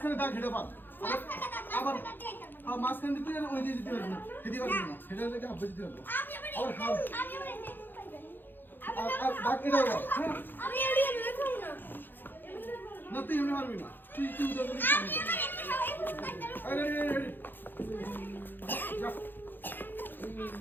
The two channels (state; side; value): late; right; 0.094 ms